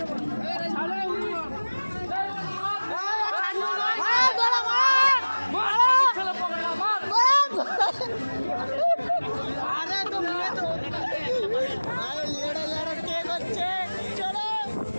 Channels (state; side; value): inverted; both; correlation -1.00